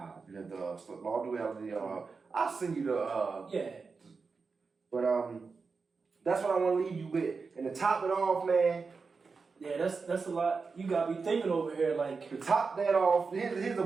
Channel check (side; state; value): left; quieter; 4.7 dB